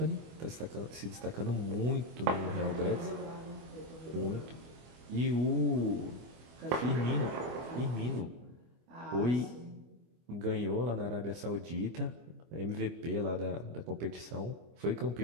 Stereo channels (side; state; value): left; late; 24 ms